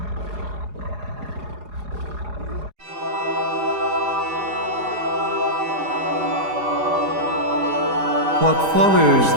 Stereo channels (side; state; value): left; late; 4.8 ms